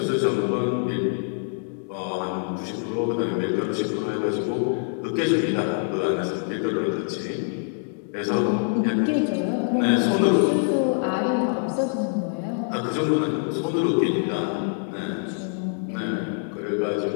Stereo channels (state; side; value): silent; right; digital silence